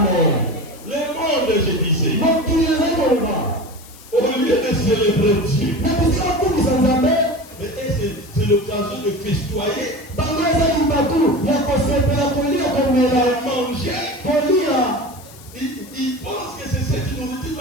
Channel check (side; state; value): left; noise; hiss, 21 dB below the sound